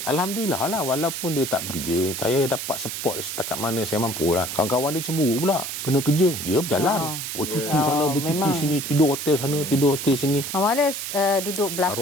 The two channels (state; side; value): noise; right; hiss, 5 dB below the sound